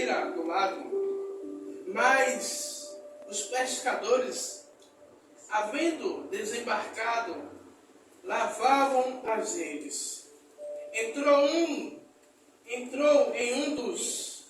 do lago. Mas os pescadores, havendo desembarcado, lavavam as redes. Entrou em um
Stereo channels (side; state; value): both; identical; correlation 1.00